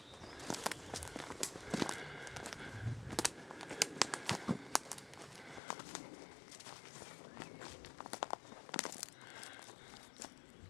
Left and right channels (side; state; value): right; drops out; at 5.6 s